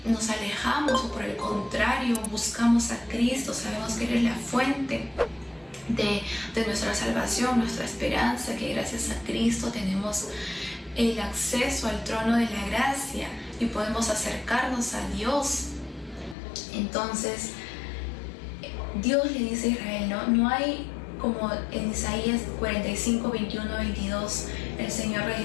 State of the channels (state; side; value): drops out; right; at 16.4 s